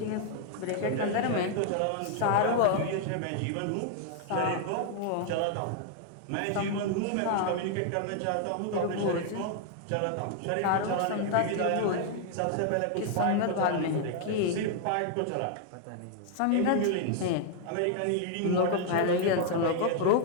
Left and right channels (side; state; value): both; different; correlation 0.00